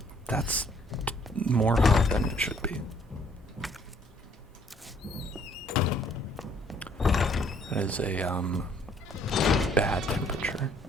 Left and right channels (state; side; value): normal; both; correlation 0.63